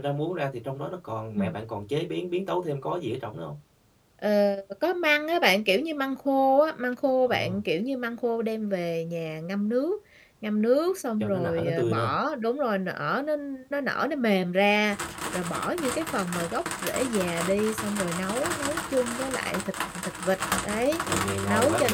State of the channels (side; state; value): both; identical; correlation 1.00